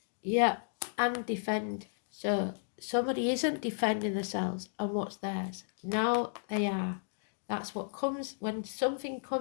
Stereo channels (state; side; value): silent; right; digital silence